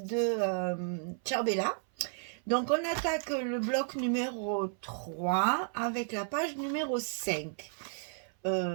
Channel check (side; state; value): left; silent; 56 dB below the other